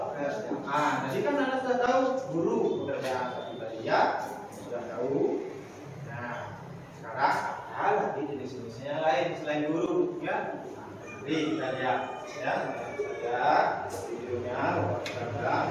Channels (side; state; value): both; identical; correlation 1.00